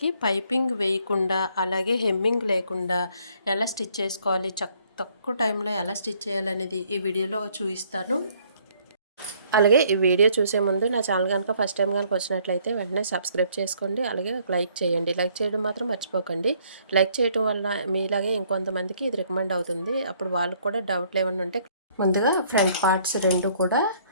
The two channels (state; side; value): inverted; both; correlation -0.63